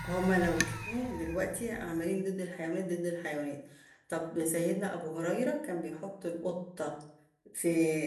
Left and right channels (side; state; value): both; identical; correlation 1.00